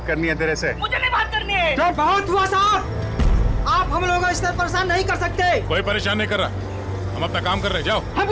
करनी है तेरे से। मुझे नहीं बात करनी है। तो बहुत हुआ साहब, आप हम लोगों को इस तरह परेशान नहीं कर सकते। कोई परेशान नहीं कर रहा, हम अपना काम कर रहे हैं, जाओ।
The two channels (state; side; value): identical; both; correlation 1.00